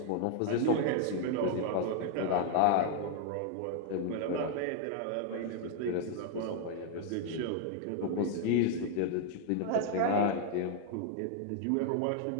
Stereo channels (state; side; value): different; both; correlation 0.00